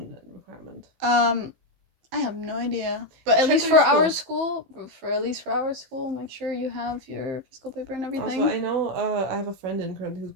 requirement. I have no idea. But at least for our school, make sure you have your physical paper and everything. Also, I know I have a friend who's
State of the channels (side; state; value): left; late; 15 ms